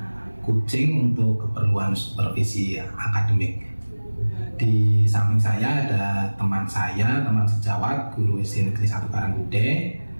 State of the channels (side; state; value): both; inverted; correlation -1.00